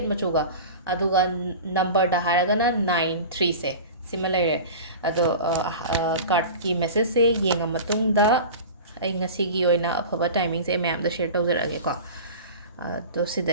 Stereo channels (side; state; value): both; inverted; correlation -0.34